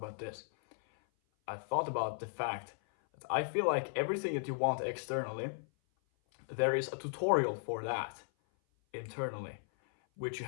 this. I thought about the fact that I feel like everything that you want externally, there is a tutorial for that internally, which you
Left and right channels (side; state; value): right; silent; 54 dB below the other